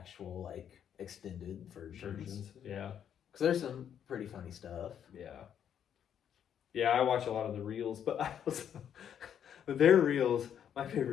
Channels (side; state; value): right; quieter; 9.0 dB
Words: like extended versions. Yeah. Because there's some pretty funny stuff. Yeah. Yeah, I watch a lot of the reels, but I also their reels, my